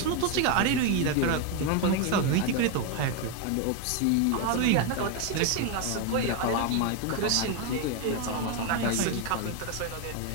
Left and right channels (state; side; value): different; both; correlation 0.02